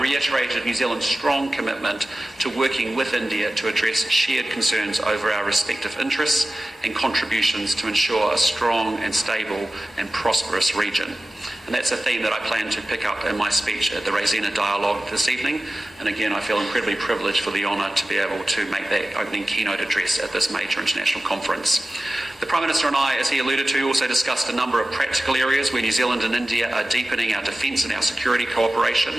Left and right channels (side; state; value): both; normal; correlation 0.95